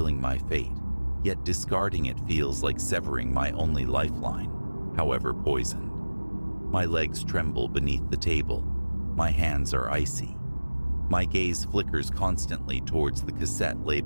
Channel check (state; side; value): inverted; both; correlation -1.00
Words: my fate, yet discarding it feels like severing my only lifeline, however poisoned. My legs tremble beneath the table. My hands are icy. My gaze flickers constantly towards the cassette